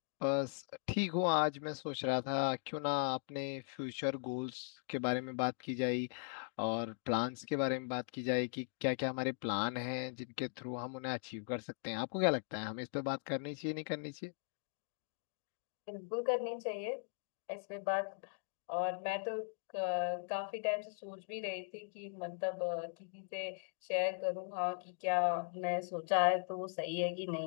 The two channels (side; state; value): right; silent; digital silence